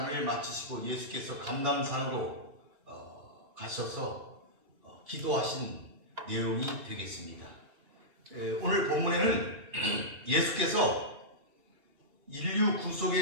마치시고 예수께서 감람산으로 가셔서 기도하신 내용이 되겠습니다. 오늘 본문에는 예수께서 인류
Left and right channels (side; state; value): left; late; 2.8 ms